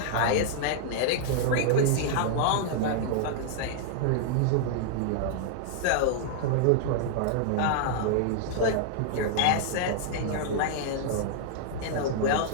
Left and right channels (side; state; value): both; different; correlation -0.01